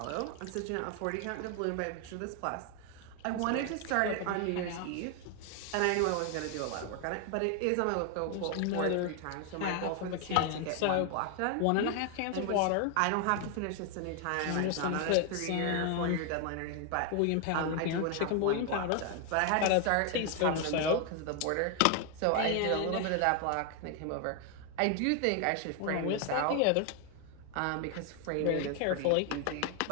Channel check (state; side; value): different; both; correlation 0.01